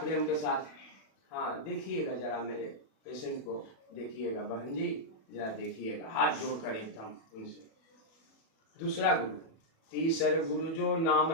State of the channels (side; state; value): right; late; 37 ms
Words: के साथ, हाँ देखिएगा जरा मेरे पेशेंट को, देखिएगा बहन जी जरा देखिएगा, हाथ जोड़कर एकदम उनसे। दूसरा गुरु। तीसर गुरु जो नाम